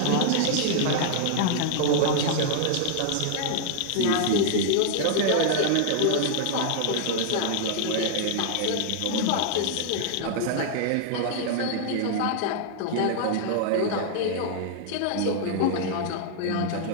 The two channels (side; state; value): both; different; correlation -0.01